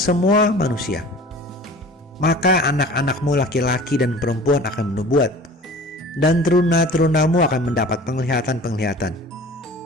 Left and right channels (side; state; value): both; normal; correlation 0.43